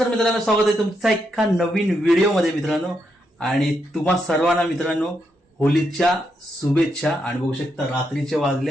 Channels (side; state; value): both; normal; correlation 0.81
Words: मित्रांनो, स्वागत आहे तुमचा एका नवीन व्हिडिओमध्ये मित्रांनो. आणि तुम्हा सर्वांना मित्रांनो होलीच्या शुभेच्छा. आणि बघू शकता रात्रीचे